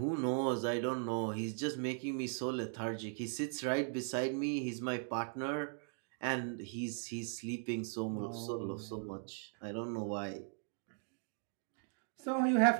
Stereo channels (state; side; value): silent; left; 52 dB below the other